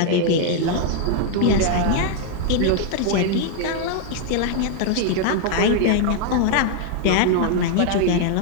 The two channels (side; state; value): both; different; correlation 0.00